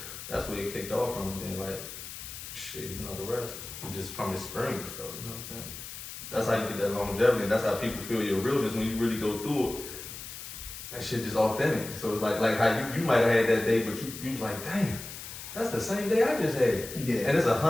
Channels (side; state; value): left; noise; hiss, 11 dB below the sound